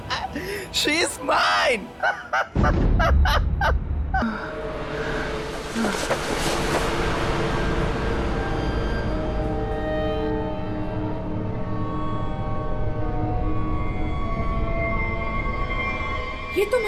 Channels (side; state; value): both; identical; correlation 1.00